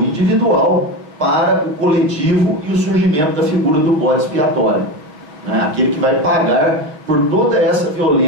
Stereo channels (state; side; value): late; left; 6.4 ms